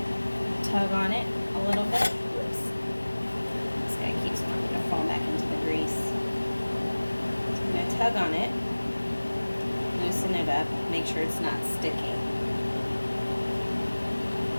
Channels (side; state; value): both; inverted; correlation -1.00